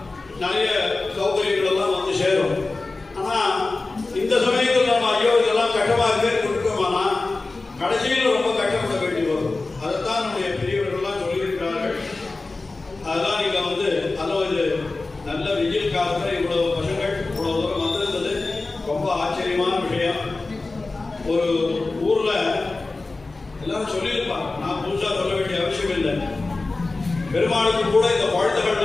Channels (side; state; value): right; quieter; 3.4 dB